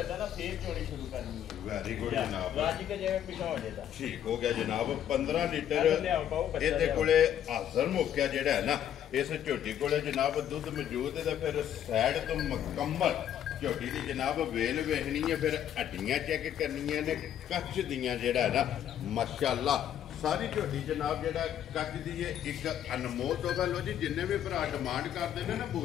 ना फिर चोरी शुरू करनी है वेरी गुड जनाब राजी के जगह पीछा हो जाता ठीक हो गया जनाब 15 लीटर ਇਹਦੇ ਕੋਲੇ ਹਾਜ਼ਰ ਮੌਕਿਆ ਜਿਹੜਾ ਹੈ ਨਾ ਇਸ ਝੋਟੀ ਕੋਲੇ ਜਨਾਬ ਦੁੱਧ ਮੌਜੂਦ ਹੈ ਤਾਂ ਫਿਰ ਸਾਈਡ ਤੋਂ ਮੁਕੰਮਲ ਝੋਟੀ ਦੀ ਜਨਾਬ ਵੇਲ ਵੇਖਣੀ ਹੈ ਫਿਰ ਹੱਡੀਆਂ ਚੈੱਕ ਕਰਨੀਆਂ ਨੇ ਕੱਚ ਦੀਆਂ ਜਿਹੜਾ ਹੈ ਨਾ ਮਾਸ਼ਾਅੱਲਾ ਸਾਰੀ ਝੋਟੀ ਜਨਾਬ ਜਿਹੜਾ ਕੱਚ ਦੀ ਹੈ ਇੱਕ ਅਨਮੋਲ ਤੋਹਫਾ ਲੋ ਜੀ ਜਿੰਨੇ ਵੀ ਭਰਾ ਡਿਮਾਂਡ ਕਰਦੇ ਨੇ ਨਾ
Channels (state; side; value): quieter; right; 10.2 dB